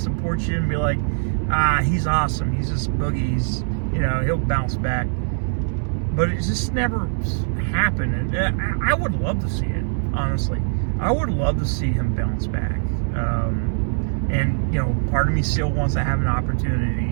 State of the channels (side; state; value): left; silent; digital silence